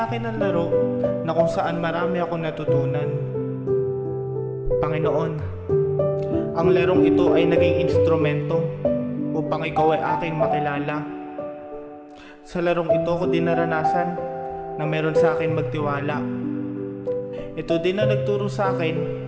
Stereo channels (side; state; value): both; identical; correlation 1.00